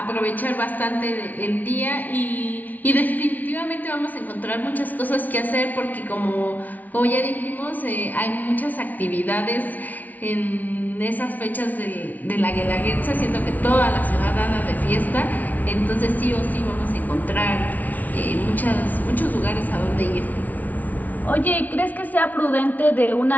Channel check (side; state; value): right; late; 0.077 ms